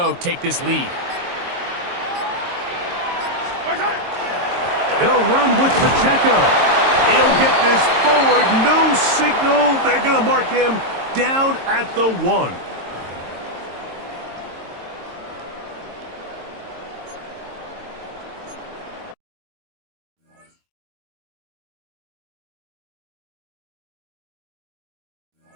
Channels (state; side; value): late; left; 22 ms